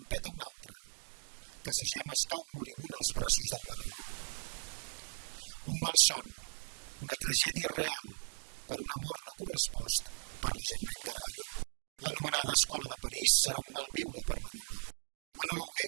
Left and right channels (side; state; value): left; silent; digital silence